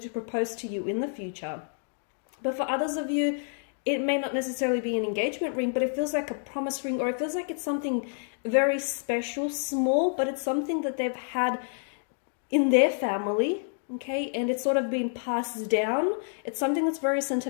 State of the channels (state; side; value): silent; right; digital silence